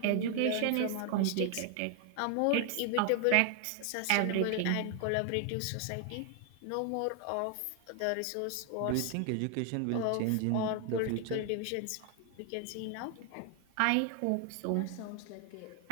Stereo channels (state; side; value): different; both; correlation 0.00